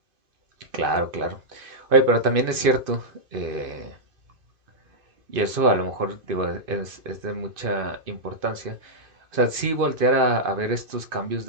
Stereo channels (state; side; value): late; left; 2.5 ms